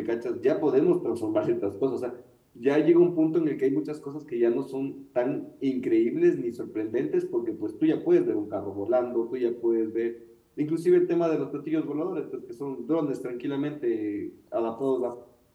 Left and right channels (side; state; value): both; identical; correlation 1.00